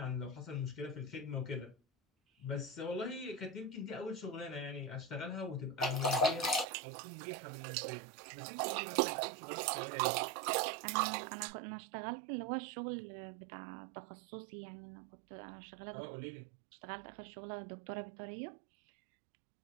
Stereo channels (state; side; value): drops out; left; at 6.7 s